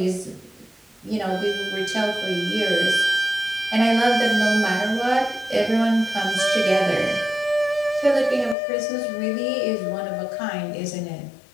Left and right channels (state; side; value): drops out; right; at 8.6 s